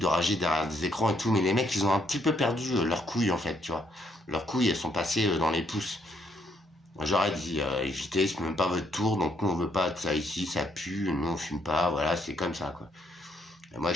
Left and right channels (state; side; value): normal; both; correlation 0.72